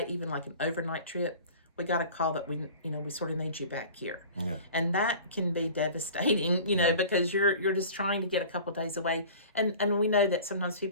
even like an overnight trip, we got a call that we sort of need you back here. Yeah. And that can be devastating, because you're just trying to get a couple days away. And we know that sometimes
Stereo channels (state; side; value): inverted; both; correlation -0.42